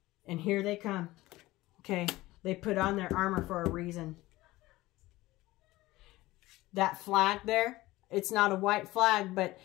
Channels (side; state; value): right; quieter; 18.4 dB